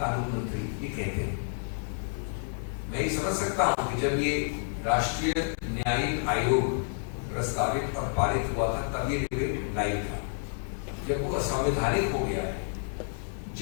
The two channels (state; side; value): silent; right; 58 dB below the other